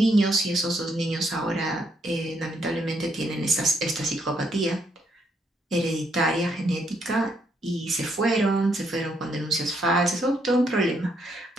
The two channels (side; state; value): both; normal; correlation 0.74